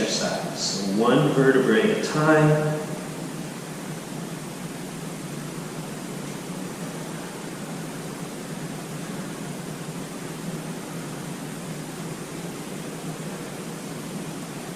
So one vertebrae at a time.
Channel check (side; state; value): both; identical; correlation 1.00